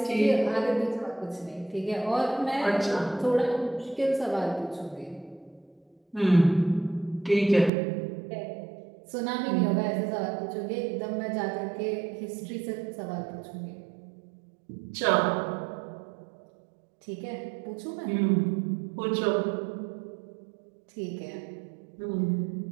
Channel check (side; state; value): left; drops out; at 7.7 s